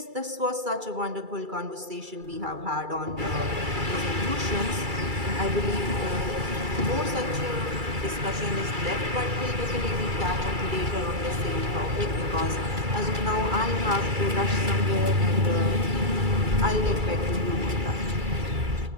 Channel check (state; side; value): late; left; 2.3 ms